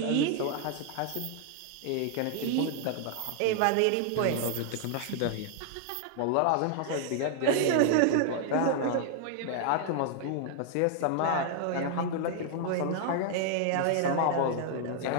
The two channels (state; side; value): different; both; correlation 0.00